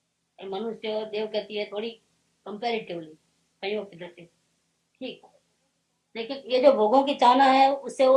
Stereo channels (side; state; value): both; identical; correlation 1.00